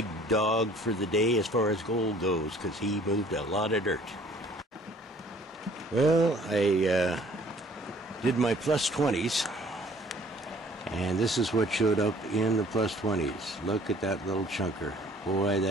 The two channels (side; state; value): both; normal; correlation 0.55